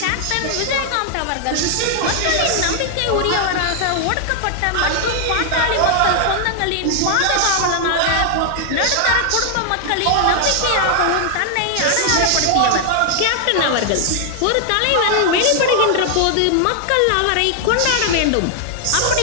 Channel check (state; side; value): different; both; correlation 0.00